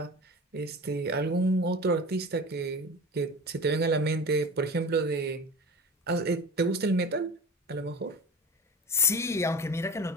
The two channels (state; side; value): normal; both; correlation 0.34